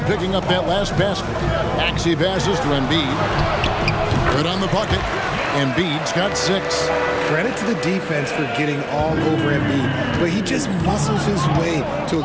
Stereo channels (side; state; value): both; identical; correlation 1.00